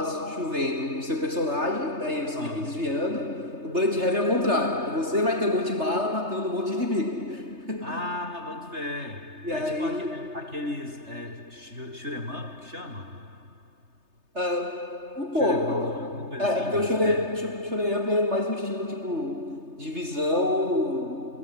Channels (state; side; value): late; left; 3.3 ms